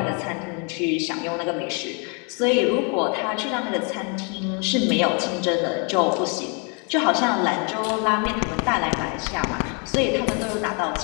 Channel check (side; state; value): right; quieter; 35.8 dB